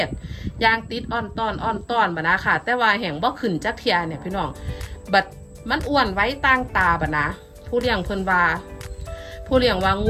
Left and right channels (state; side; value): identical; both; correlation 1.00